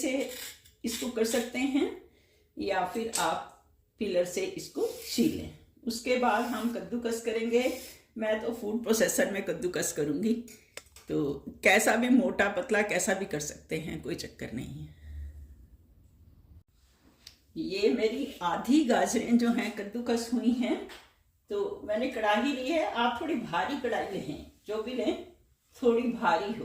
इसको कर सकते हैं, या फिर आप पिलर से इसको छील लें। उसके बाद हम कद्दूकस करेंगे। मैं तो फूड प्रोसेसर में कद्दूकस करूँगी, तो कैसा भी मोटा पतला कैसा भी कर सकते हैं, कोई चक्कर नहीं है। ये मेरी आधी गाजरें जो हैं कद्दूकस हुई हैं। तो मैंने कढ़ाई ली है। आप थोड़ी भारी कढ़ाई लें, जो भी लें थोड़ी भारी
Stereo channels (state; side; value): identical; both; correlation 1.00